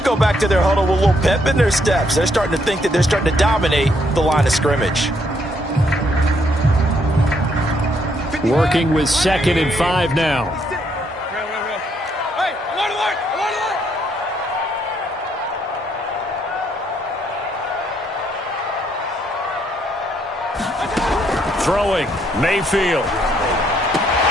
back to their huddle with a little pep in their steps. They're starting to think that they're starting to dominate the line of scrimmage. Working with 2nd and 5 now. Throwing, Mayfield.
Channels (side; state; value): both; normal; correlation 0.72